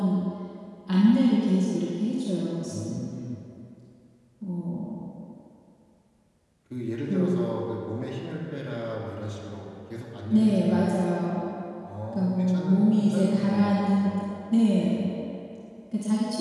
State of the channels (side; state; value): both; identical; correlation 1.00